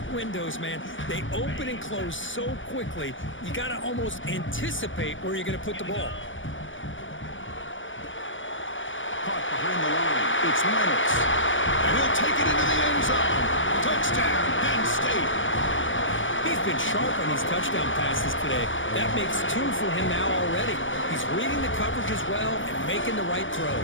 windows, man. They open and close so quickly, you got to almost anticipate where you're going to put the ball. Behind the line, it's Reynolds. And he'll take it into the end zone. Touchdown, Penn State. He's been sharp on these touchdown passes today. That makes 2 for him now already. He's reading the coverage as well and making the right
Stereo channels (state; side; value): late; right; 0.56 ms